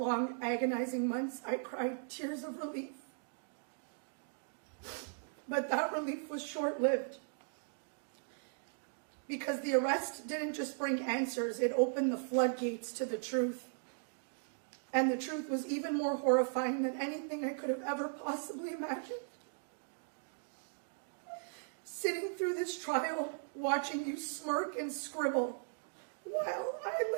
agonizing months, I cried tears of relief. But that relief was short-lived, because the arrest didn't just bring answers, it opened the floodgates to the truth. And the truth was even more horrifying than anything I could have ever possibly imagined. Sitting through this trial, watching you smirk and scribble, while I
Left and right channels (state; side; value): silent; left; digital silence